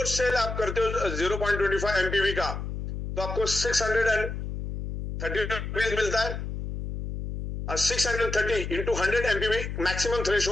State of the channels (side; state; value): left; noise; hum, 5 dB below the sound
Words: सेल आप करते हो 0.25 एमपीवी का तो आपको 630 रुपीज मिलता है और 630 इंटू 100 एमपीवी मैक्सिमम